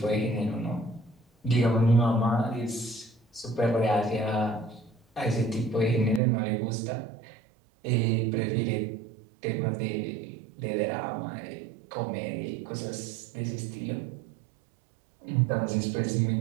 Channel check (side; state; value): left; drops out; at 6.2 s